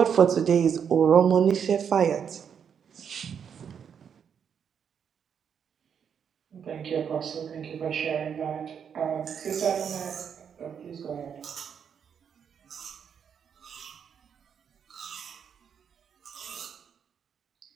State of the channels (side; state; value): left; quieter; 7.6 dB